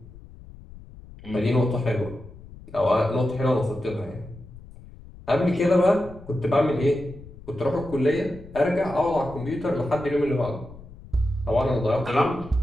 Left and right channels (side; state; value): left; noise; rumble, 18 dB below the sound